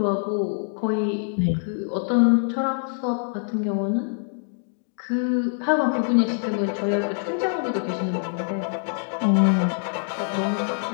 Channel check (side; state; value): right; silent; 62 dB below the other